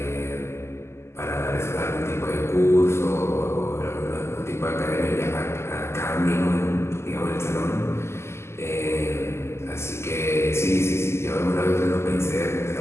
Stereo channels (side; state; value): right; late; 0.13 ms